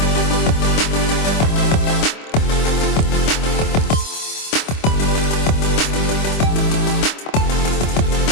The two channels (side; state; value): right; late; 25 ms